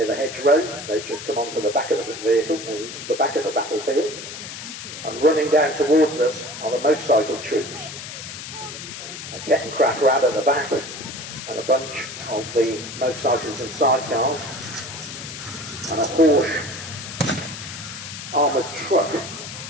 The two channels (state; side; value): noise; left; hiss, 10 dB below the sound